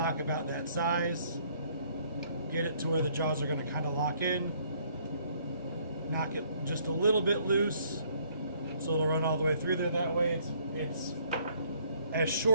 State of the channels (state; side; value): inverted; both; correlation -0.64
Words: about that size, get it to where the jaws are going to kind of lock in, knock it just a little bit loose so it'll run all the way through there. That way it's as